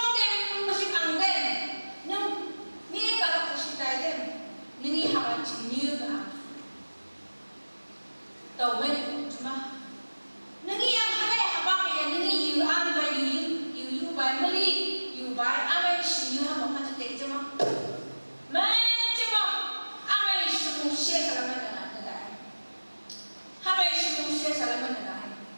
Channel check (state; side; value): inverted; both; correlation -1.00